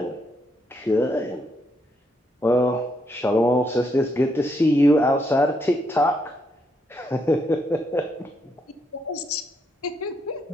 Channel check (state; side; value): normal; both; correlation 0.77